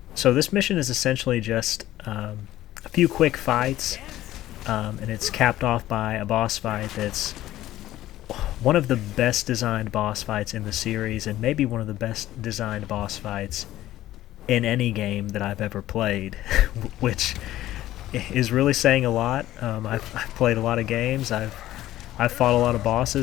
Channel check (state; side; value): quieter; right; 14.5 dB